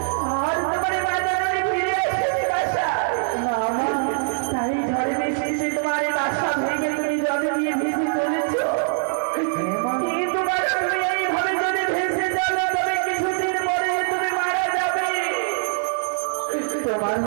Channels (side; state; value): left; silent; digital silence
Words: আর তোমার মা যেন ফিরে এসেছে বাসায়। না মা, তাই ঝড় বৃষ্টিতে তোমার বাসা ভেঙে তুমি জলে দিয়ে ভেসে চলেছো। কিন্তু বাবা, তুমি এইভাবে যদি ভেসে চলো তবে কিছুদিন পরে তুমি মারা যাবে। তোমার